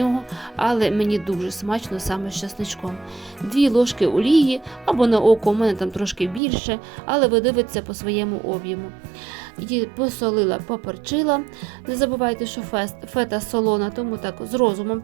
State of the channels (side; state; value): left; drops out; at 6.4 s